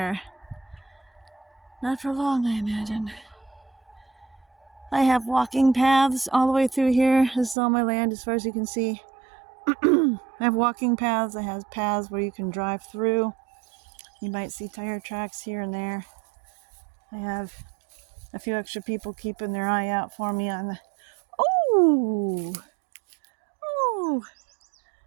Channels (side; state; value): left; drops out; at 7.6 s